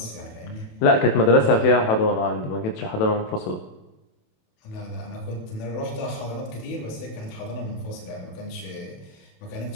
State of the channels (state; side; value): late; right; 27 ms